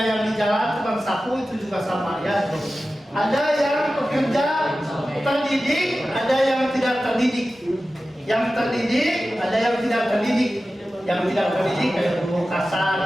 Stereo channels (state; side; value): normal; both; correlation 0.94